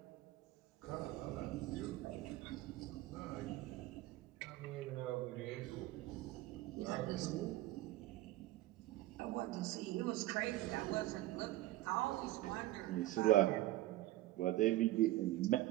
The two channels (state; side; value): quieter; left; 16.3 dB